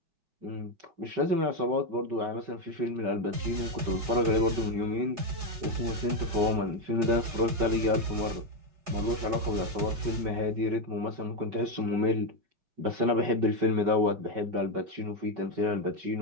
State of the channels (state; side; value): late; left; 5.2 ms